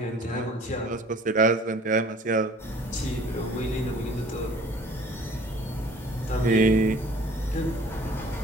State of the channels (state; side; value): normal; both; correlation 0.51